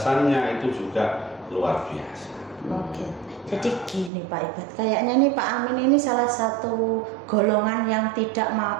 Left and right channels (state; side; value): drops out; left; at 4.1 s